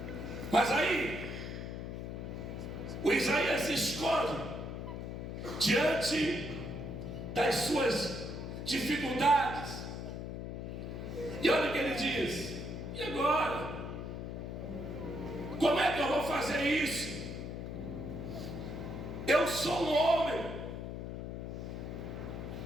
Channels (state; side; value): noise; left; hum, 6 dB below the sound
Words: Mas aí, o Isaías se esconde diante das suas dificuldades. E olha o que ele diz: e agora? Como é que eu vou fazer isso? Eu sou um homem